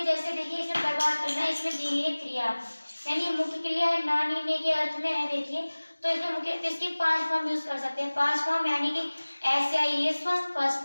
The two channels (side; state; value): both; inverted; correlation -1.00